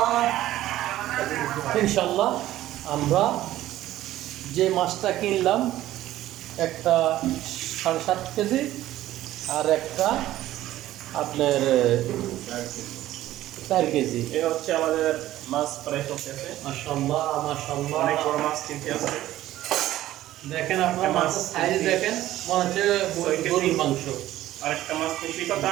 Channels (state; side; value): quieter; left; 14.4 dB